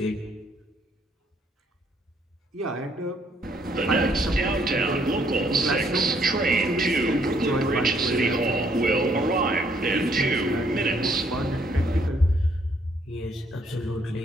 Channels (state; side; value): normal; both; correlation 0.68